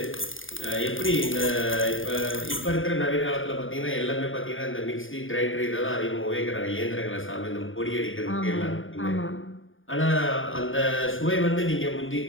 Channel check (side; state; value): right; late; 0.58 ms